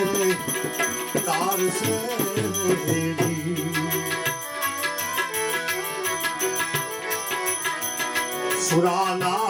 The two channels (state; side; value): identical; both; correlation 1.00